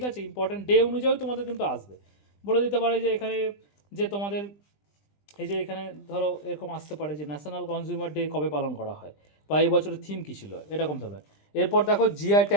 আছে, ইম্পর্টেন্ট ডে অনুযায়ী তোমাদের কিন্তু আসবে। বলে দিতে পারে যে এখানে যে তোমাদের এই যে এখানে ধরো এরকম আসতে পারে যে ন্যাশনাল কনজিউমার ডে কবে পালন করা হয়, বা এই বছরের থিম কী ছিল, এরকম ধরনের। এরপর দেখো জিআই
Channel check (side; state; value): right; late; 20 ms